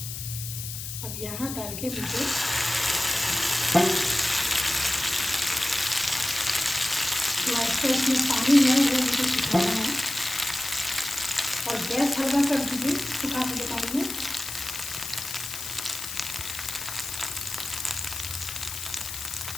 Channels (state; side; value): noise; left; hiss, 7 dB below the sound